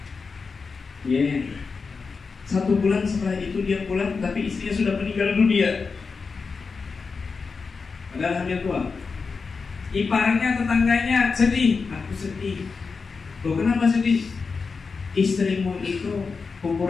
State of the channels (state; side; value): quieter; right; 4.8 dB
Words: Yeah. 1 bulan setelah itu dia pulang, tapi istrinya sudah meninggal dunia. Padahal hamil tua. Iparnya, tetangganya sedih. Aku sedih. Loh, kenapa sedih? Istrimu itu